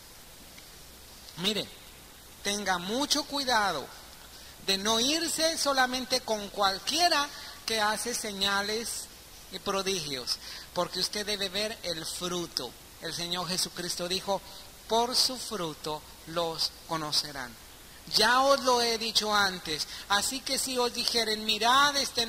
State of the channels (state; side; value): identical; both; correlation 1.00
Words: Mire, tenga mucho cuidado de no irse solamente con cualquiera que hace señales y prodigios, porque usted debe ver el fruto. El Señor Jesucristo dijo, por su fruto los conocerán. Ya os lo he dicho antes, así que si os dijeren, mirad, está